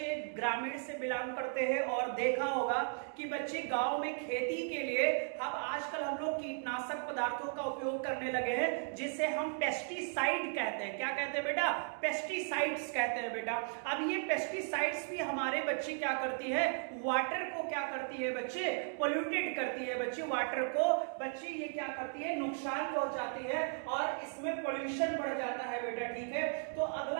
ग्रामीण से बिलोंग करते हैं और देखा होगा कि बच्चे गांव में खेती के लिए अब आजकल हम लोग कीटनाशक पदार्थों का उपयोग करने लगे हैं, जिसे हम पेस्टिसाइड कहते हैं। क्या कहते हैं बेटा, पेस्टिसाइड्स कहते हैं बेटा। अब ये पेस्टिसाइड्स भी हमारे बच्चे क्या करती है, वाटर को क्या करती है बच्चे, पोल्यूटेड करती है बच्चे, वाटर को बच्चे ये क्या करती है, नुकसान पहुंचाती है, और इसमें पोल्यूशन बढ़ जाता है बेटा, ठीक है। तो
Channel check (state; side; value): silent; left; 54 dB below the other